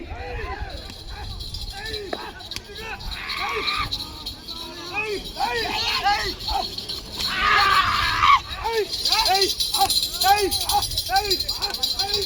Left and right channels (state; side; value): identical; both; correlation 1.00